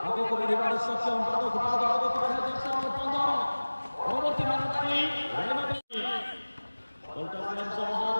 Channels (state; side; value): inverted; both; correlation -1.00